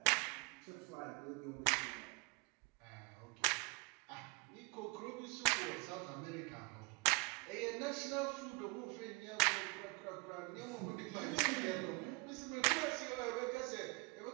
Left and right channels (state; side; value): quieter; left; 30.1 dB